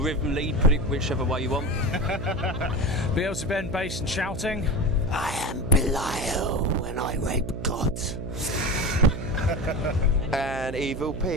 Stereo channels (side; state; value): right; noise; hum, 7 dB below the sound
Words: rhythm lead, put it whichever way you want. Beelzebub, bass and shouting. I am Belial when I rape gods. And Evil